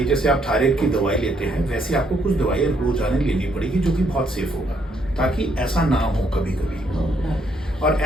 जैसे आप थायराइड की दवाई लेते हैं, वैसे आपको कुछ दवाई रोजाना लेनी पड़ेगी जो कि बहुत सेफ होगा, ताकि ऐसा ना हो कभी कभी. और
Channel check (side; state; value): both; normal; correlation 0.71